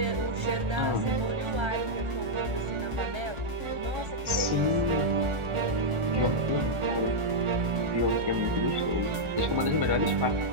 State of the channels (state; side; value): late; left; 1.1 ms